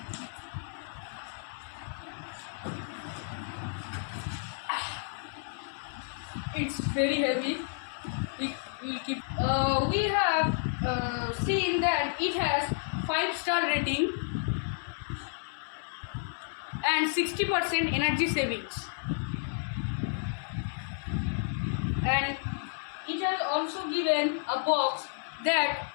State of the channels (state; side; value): silent; right; 57 dB below the other